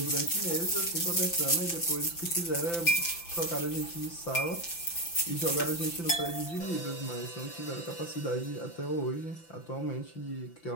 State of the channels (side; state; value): right; late; 5.9 ms